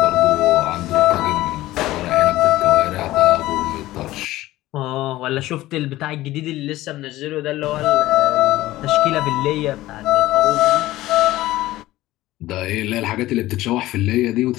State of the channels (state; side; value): quieter; right; 16.6 dB